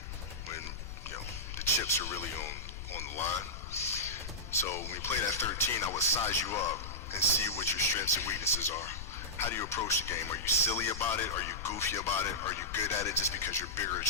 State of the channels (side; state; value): left; noise; rumble, 9 dB below the sound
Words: when, the chips are really on the line. So when we played at 13, I would size you up and see what your strengths and weaknesses are. How do you approach the game? Are you silly about it? Are you goofy about it? Are you good at it just because you're bigger and